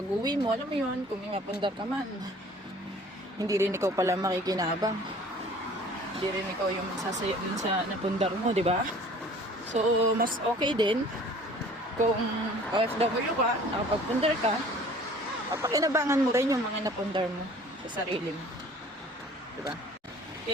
uwi mo, alam mo yun, kung may mapundar ka man, hindi rin ikaw pala makikinabang. Hindi rin ikaw yung sasaya dun sa napundar mo, di ba? So, mas okay din kung OFW ka, nakapagpundar ka, papakinabangan mo rin yung mga napundar mo sa sarili mo. Diba?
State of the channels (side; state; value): both; normal; correlation 0.50